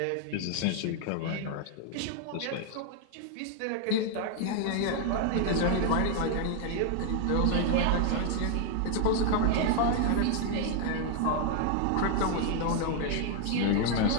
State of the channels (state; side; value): different; both; correlation 0.00